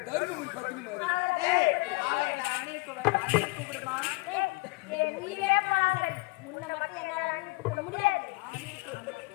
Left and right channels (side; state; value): right; quieter; 25.7 dB